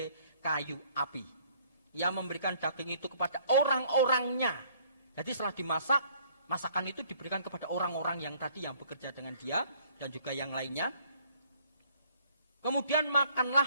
kayu api. Ia memberikan daging itu kepada orang-orangnya. Jadi setelah dimasak, masakan itu diberikan kepada orang-orang yang tadi yang bekerja dengan dia dan juga yang lainnya. Kemudian makanlah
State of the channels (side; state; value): both; inverted; correlation -0.60